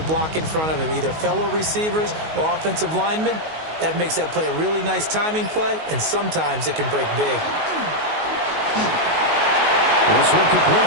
block in front of him, either fellow receivers or offensive linemen? That makes that play a really nice timing play, and sometimes it can break big. This one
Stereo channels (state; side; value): late; left; 19 ms